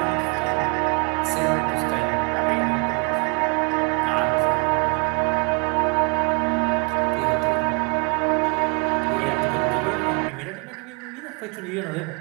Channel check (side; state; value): left; quieter; 33.7 dB